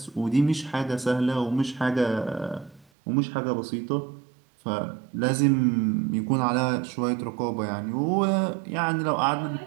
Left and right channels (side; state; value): left; drops out; at 2.9 s